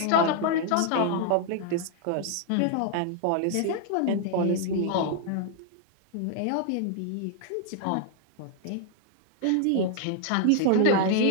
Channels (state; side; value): different; both; correlation 0.00